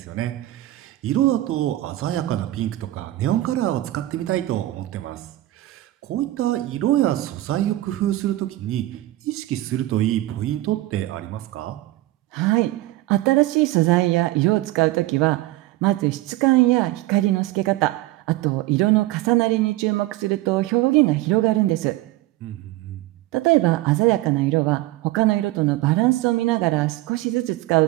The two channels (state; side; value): quieter; left; 17.0 dB